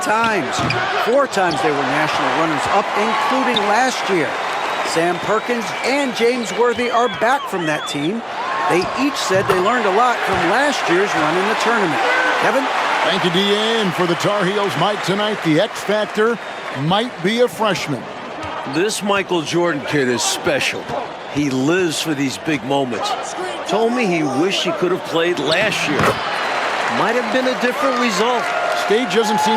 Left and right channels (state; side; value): identical; both; correlation 1.00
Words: 4 times they were national runners-up, including last year. Sam Perkins and James Worthy are back from that team. They each said they learned a lot from last year's run in the tournament. Kevin? Thank you, D.A. And for the Tar Heels, Mike, tonight, the X factor might be a freshman. This Michael Jordan kid is special. He lives for these big moments. Told me he wished he could have played last year. Might have been a different result. Stage doesn't